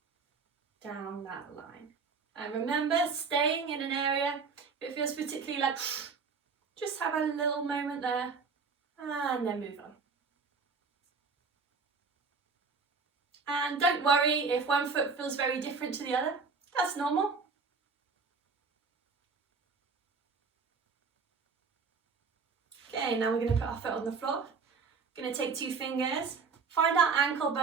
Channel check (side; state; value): left; quieter; 5.0 dB